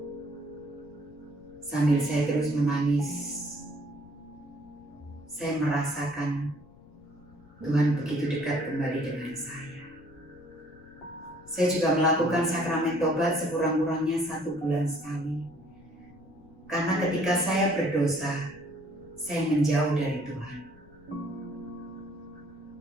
sambil saya terus menangis. Saya merasakan Tuhan begitu dekat kembali dengan saya. Saya juga melakukan sakramen tobat sekurang-kurangnya 1 bulan sekali. Karena ketika saya berdosa, saya menjauh dari Tuhan.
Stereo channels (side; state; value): left; noise; rumble, 24 dB below the sound